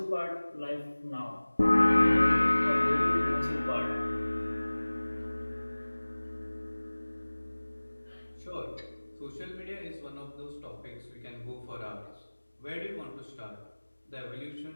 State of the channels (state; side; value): inverted; both; correlation -1.00